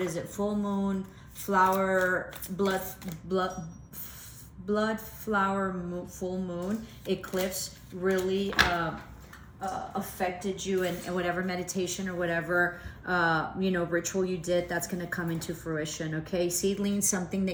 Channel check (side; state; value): both; identical; correlation 1.00